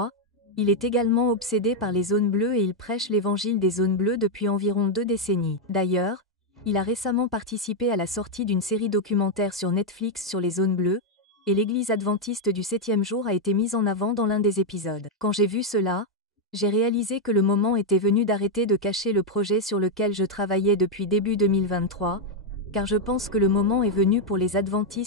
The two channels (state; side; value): normal; both; correlation 0.00